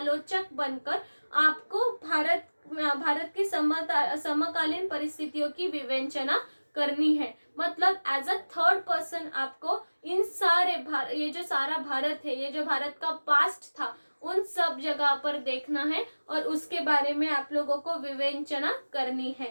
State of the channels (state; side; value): inverted; both; correlation -1.00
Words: बनकर, आपको भारत की समकालीन परिस्थितियों की विवेचना करनी है। मतलब एज अ थर्ड पर्सन आपको इन सारे ये जो सारा भारत है, ये जो भारत का पास्ट था, उन सब जगह पर देखना है और उसके बारे में आप लोगों को विवेचना करनी